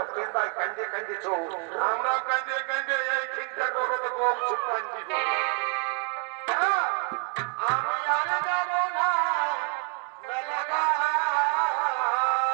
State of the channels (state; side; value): quieter; left; 39.5 dB